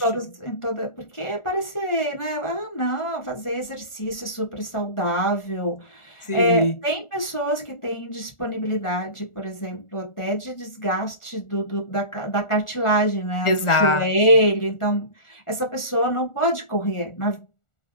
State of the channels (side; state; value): right; late; 1.4 ms